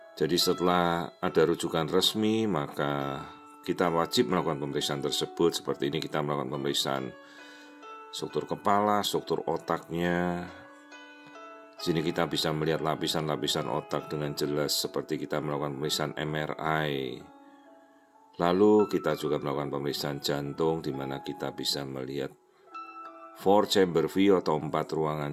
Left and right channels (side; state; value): both; identical; correlation 1.00